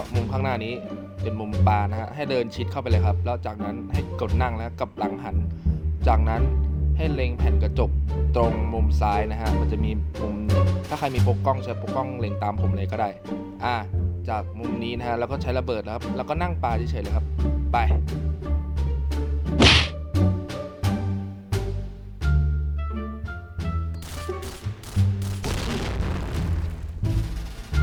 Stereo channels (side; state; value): both; identical; correlation 1.00